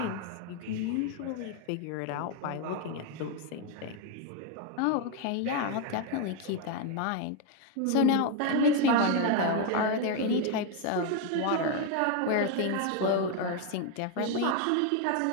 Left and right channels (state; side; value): different; both; correlation 0.01